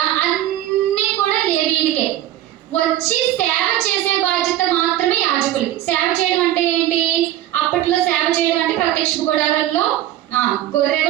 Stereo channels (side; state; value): left; quieter; 13.4 dB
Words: అన్నీ కూడా లేవీయులకే. వచ్చి సేవ చేసే బాధ్యత మాత్రమే యాజకులకి. సేవ చేయడం అంటే ఏంటి? అప్పట్లో సేవ చేయడం అంటే ప్రత్యక్ష గుడారంలో